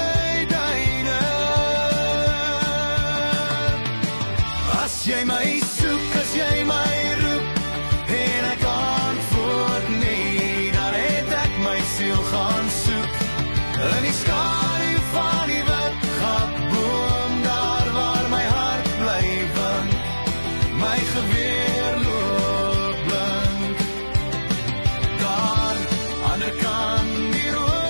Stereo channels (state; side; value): inverted; both; correlation -1.00